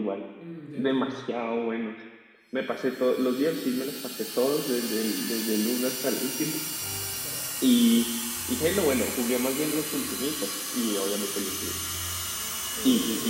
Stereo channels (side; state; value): both; identical; correlation 1.00